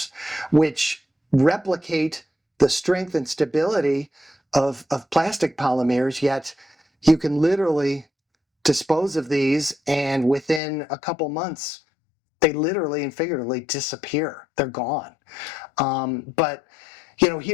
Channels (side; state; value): right; drops out; at 10.6 s